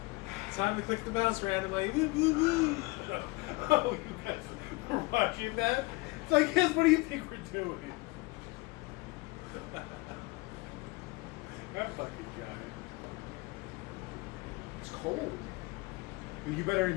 Time to click the mouse randomly. Woo, woo, woo. Oh, you guys were watching that? It's like, yes, what do you think we're doing? That fucking guy. It's cold. You better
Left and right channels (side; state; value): right; quieter; 23.8 dB